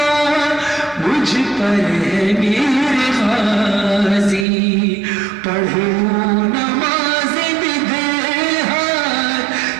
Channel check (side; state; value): left; drops out; at 4.5 s